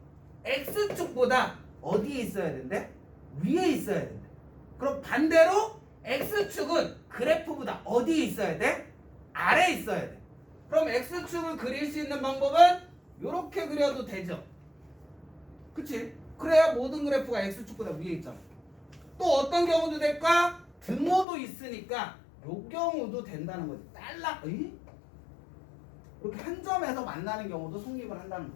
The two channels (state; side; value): drops out; right; at 21.2 s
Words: x축보다 어디에 있어야 된대? 위에 있어야 된대. 그럼 반대로 x축은 그래프보다 어디에 있어야 돼? 아래에 있어야 돼. 그럼 x축을 그릴 수 있는 방법은 이렇게 그려도 되죠. 그치? 그래야 모든 그래프가 x축보다 위에 있잖아. 또 어떤 경우도 될까? 등호도 있으니까 요 경우도 된다는 거지. 이렇게 한 점에서 만나는 경우도 성립을 한다는